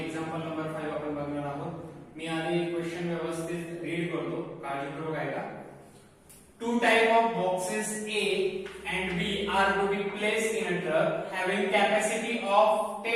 number 5 आपण बघणार आहोत. मी आधी क्वेश्चन व्यवस्थित रीड करतो, काळजीपूर्वक ऐका. Two type of boxes A and B are to be placed in a truck having capacity of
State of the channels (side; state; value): both; identical; correlation 1.00